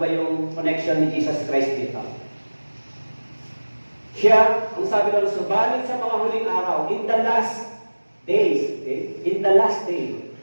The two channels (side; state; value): both; inverted; correlation -1.00